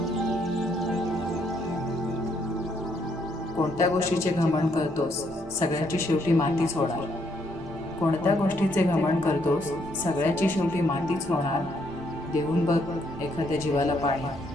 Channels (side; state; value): left; noise; hum, 26 dB below the sound